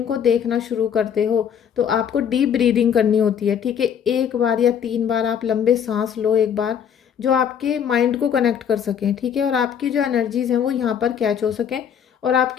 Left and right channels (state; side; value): quieter; right; 8.2 dB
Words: को देखना शुरू करते हो तो आपको डीप ब्रीदिंग करनी होती है। ठीक है, 1 बार या 3 बार आप लंबे सांस लो एक बार, जो आपके माइंड को कनेक्ट कर सकें। ठीक है, और आपकी जो एनर्जीज हैं वो यहाँ पर कैच हो सकें और